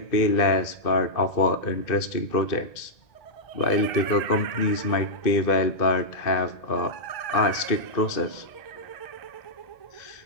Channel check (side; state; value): right; late; 2.5 ms